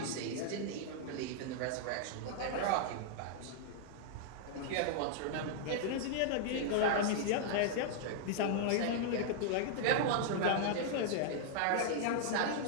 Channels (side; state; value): both; different; correlation -0.01